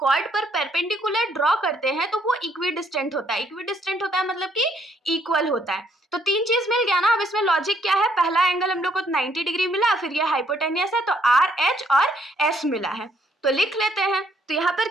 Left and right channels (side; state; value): both; normal; correlation 0.69